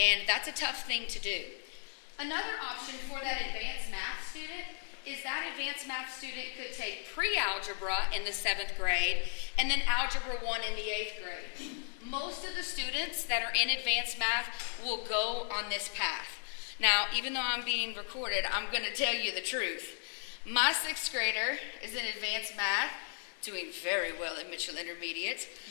that's a tough thing to do. Another option for that advanced math student is that advanced math student could take pre-algebra in the 7th grade and then algebra 1 in the 8th grade. Most of the students that are in advanced math will go on this path. Now, even though I'm being recorded, I'm going to tell you the truth. My 6th grader is in advanced math, doing very well at Mitchell Intermediate,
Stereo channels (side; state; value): right; silent; 54 dB below the other